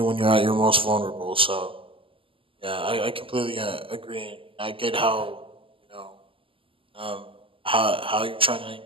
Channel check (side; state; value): left; late; 0.25 ms